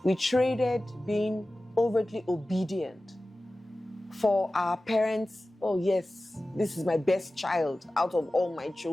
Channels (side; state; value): both; normal; correlation 0.96